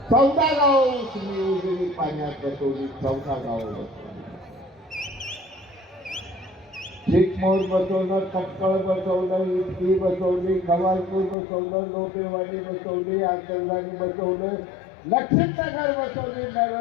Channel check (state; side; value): drops out; right; at 11.4 s